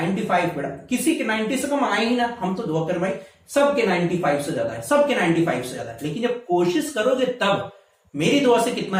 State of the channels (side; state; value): both; identical; correlation 1.00